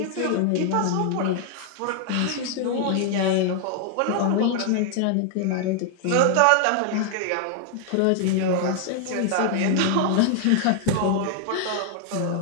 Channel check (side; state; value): both; different; correlation 0.00